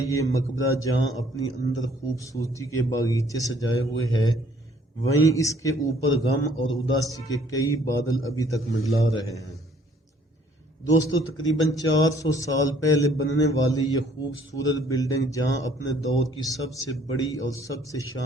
یہ مقبرہ جہاں اپنی اندر خوبصورتی کے باغیچے سجائے ہوئے ہے، وہیں اس کے اوپر غم اور اداسی کے کئی بادل ابھی تک منڈلا رہے ہیں۔ دوستو، تقریباً 400 سال پہلے بننے والی یہ خوبصورت بلڈنگ جہاں اپنے دور کی سب سے بڑی اور سب سے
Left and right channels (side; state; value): both; normal; correlation 0.61